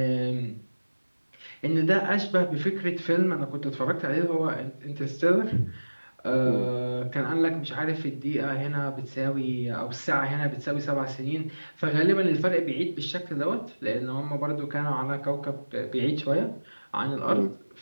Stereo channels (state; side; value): inverted; both; correlation -1.00